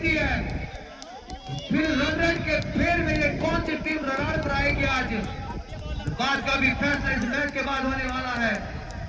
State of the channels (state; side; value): identical; both; correlation 1.00